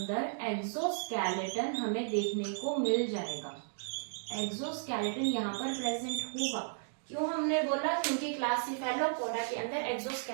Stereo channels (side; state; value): left; silent; digital silence